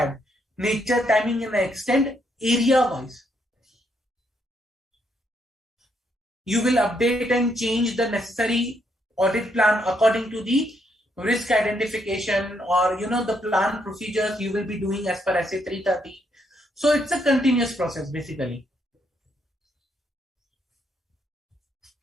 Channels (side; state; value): both; normal; correlation 0.75